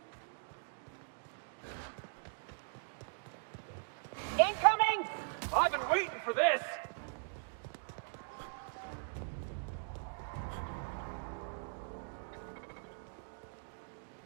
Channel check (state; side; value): silent; left; digital silence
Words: Incoming! I've been waiting for this.